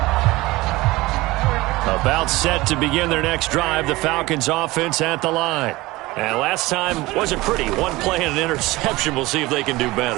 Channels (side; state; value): left; quieter; 20.2 dB